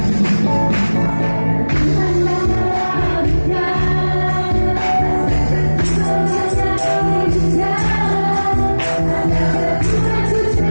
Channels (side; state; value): both; inverted; correlation -1.00